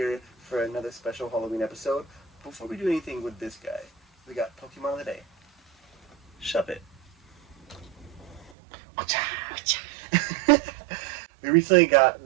for another special Halloween episode. Before we do anything with this guy, we got Pokemon of the Day. Shove it. We recently got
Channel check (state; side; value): drops out; left; at 8.5 s